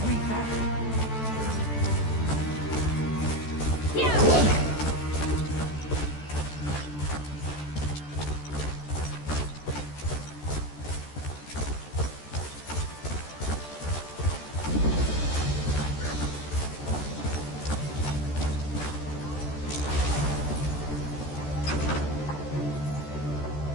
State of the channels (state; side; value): late; right; 14 ms